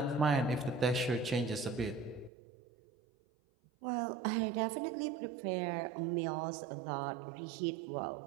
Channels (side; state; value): left; drops out; at 2.3 s